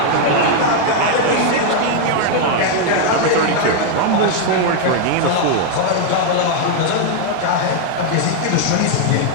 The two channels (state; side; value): different; both; correlation 0.00